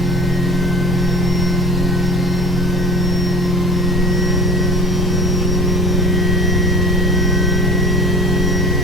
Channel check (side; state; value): both; normal; correlation 0.43